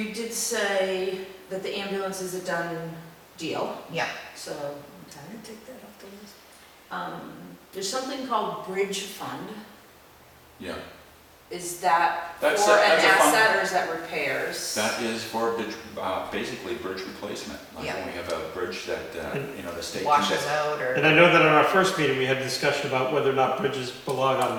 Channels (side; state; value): both; identical; correlation 1.00